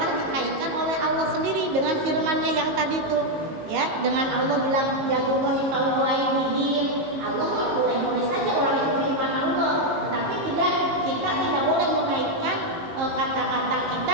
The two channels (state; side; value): late; left; 19 ms